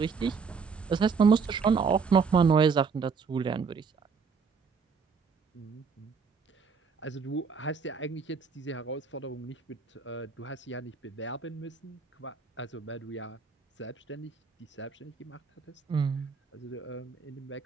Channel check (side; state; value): left; quieter; 5.5 dB